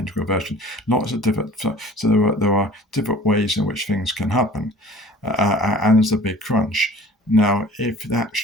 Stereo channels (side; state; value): both; normal; correlation 0.46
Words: version, lots of different. So there are different ways in which things can happen, and there's a Big Crunch. Now, if that's